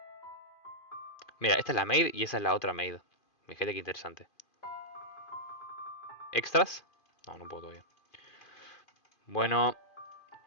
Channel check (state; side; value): late; right; 2.4 ms